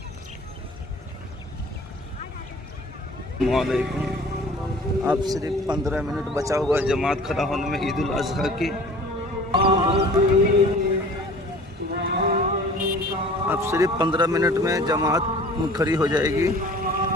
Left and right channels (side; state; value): both; normal; correlation 0.46